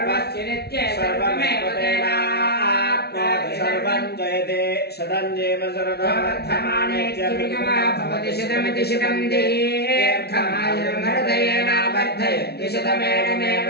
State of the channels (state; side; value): late; right; 0.47 ms